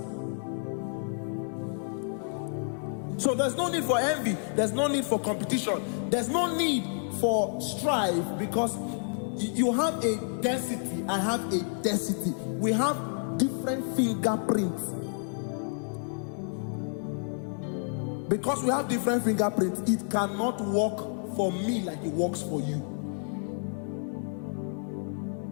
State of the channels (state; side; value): silent; right; 58 dB below the other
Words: So there's no need for envy. There's no need for competition. There's no need for strife, because you have a density. I have a density. We have different fingerprints. Because we have different fingerprints, it cannot work for me like it works for you.